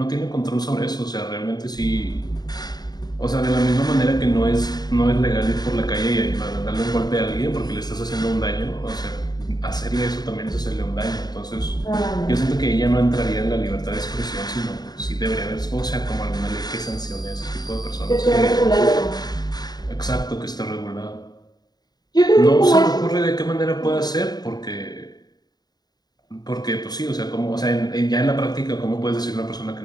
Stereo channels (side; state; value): right; late; 0.20 ms